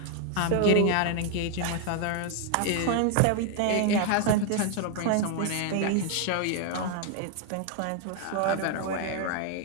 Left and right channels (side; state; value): both; different; correlation 0.00